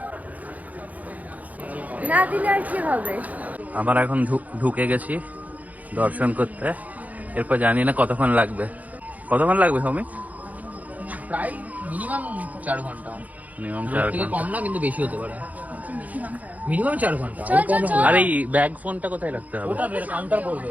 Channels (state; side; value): late; left; 0.076 ms